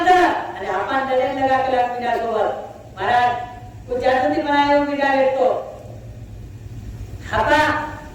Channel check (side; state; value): both; identical; correlation 1.00